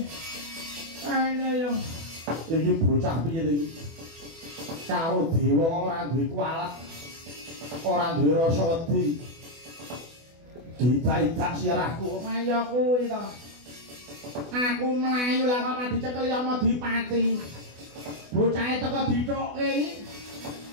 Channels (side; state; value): left; late; 24 ms